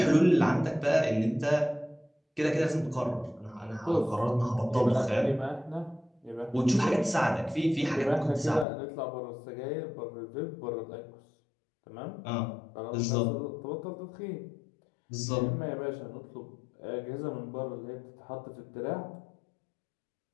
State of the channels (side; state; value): right; drops out; at 8.7 s